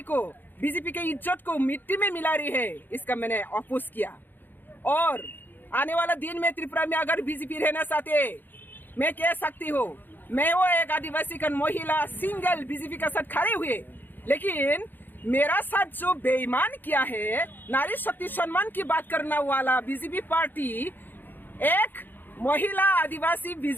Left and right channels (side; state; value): right; late; 0.091 ms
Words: को बीजेपी के इज्जत को मिट्टी में मिला रही है, इसका मैंने अपोज किया। और आने वाला दिन में त्रिपुरा में अगर बीजेपी रहना चाहते, मैं कह सकती हूँ मैं वो एक आदिवासी का महिला सिंगल बीजेपी के साथ खड़े हुए, लेकिन मेरा साथ जो बेईमान किया है, नारी शक्ति सम्मान की बात करने वाला बीजेपी पार्टी एक महिला आदिवासी